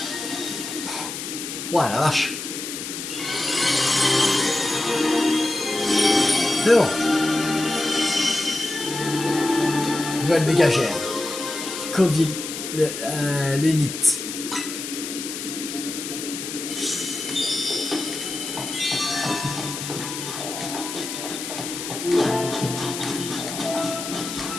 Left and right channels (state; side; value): noise; left; hiss, 7 dB below the sound